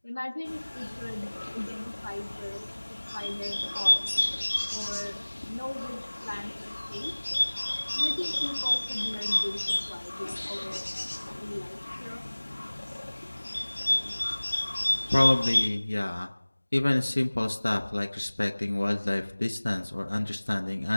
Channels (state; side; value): inverted; both; correlation -1.00